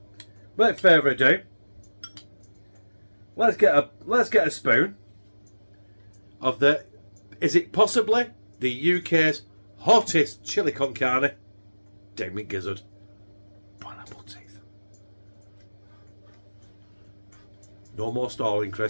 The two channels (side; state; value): both; inverted; correlation -1.00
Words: without further ado, let's get a spoon of the, is it possibly the UK's hottest chili con carne? Damn it, gizzard. Pineapple teeth. No more stalling,